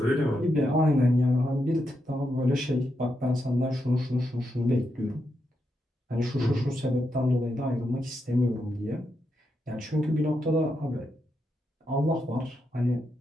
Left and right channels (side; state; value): both; normal; correlation 0.83